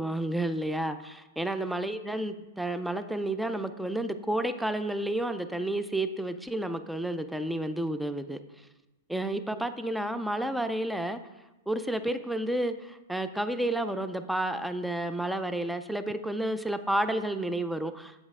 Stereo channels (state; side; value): normal; both; correlation 0.78